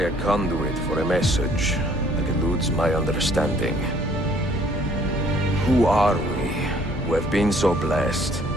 a conduit for a message that eludes my understanding. Who are we, who have been so blessed,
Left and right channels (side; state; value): both; normal; correlation 0.60